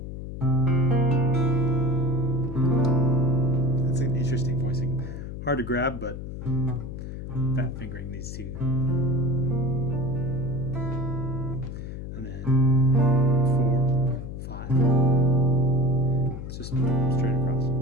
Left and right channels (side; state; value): left; noise; hum, 8 dB below the sound